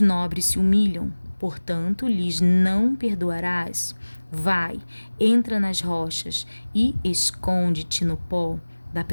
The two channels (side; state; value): both; inverted; correlation -1.00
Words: se humilham. Portanto, lhes não perdoarás. Vai, entra nas rochas e esconde-te no pó da